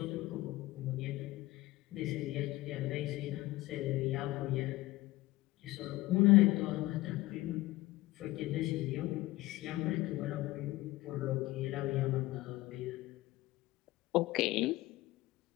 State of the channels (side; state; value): right; quieter; 18.6 dB